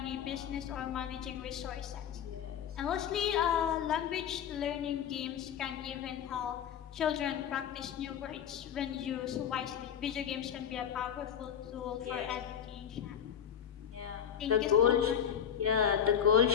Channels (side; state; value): right; quieter; 8.7 dB